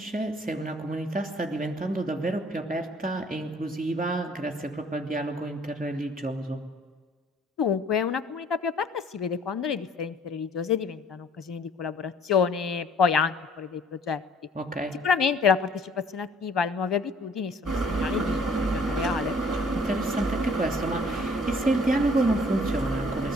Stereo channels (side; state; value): both; normal; correlation 0.57